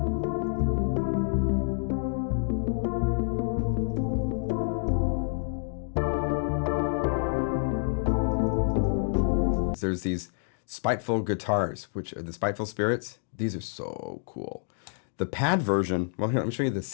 There's these spiteful guitars, which are the spiteful spirits. These are so cool. The pad version, well, here, let me show you the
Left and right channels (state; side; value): silent; right; digital silence